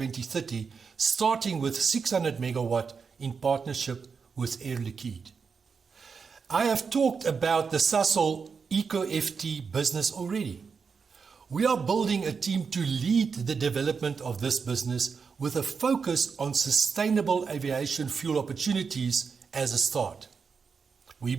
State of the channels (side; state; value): left; quieter; 5.6 dB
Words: starting with 600 megawatt in partnership with Air Liquide. I have talked about the Sasol EcoFT business already. We are building a team to lead the development of this business with a focus on sustainable aviation fuel opportunities as a start. We